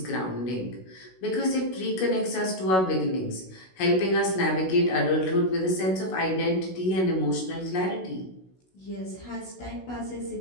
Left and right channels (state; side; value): late; right; 16 ms